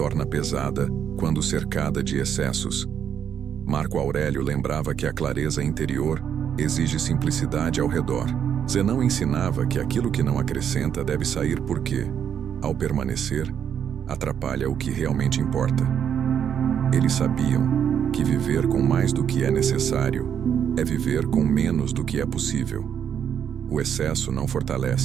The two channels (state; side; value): quieter; left; 8.5 dB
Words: pesada quando cercada de excessos. Marco Aurélio lembrava que a clareza interior exige simplicidade ao redor. Zenão ensinava que aquilo que não acrescenta deve sair porque, ao permanecer, atrapalha o que realmente importa. Eles sabiam que viver com mais do que é necessário é viver com menos do que é possível. O excesso não